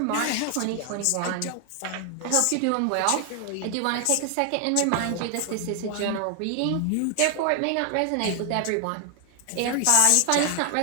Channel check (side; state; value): both; different; correlation 0.00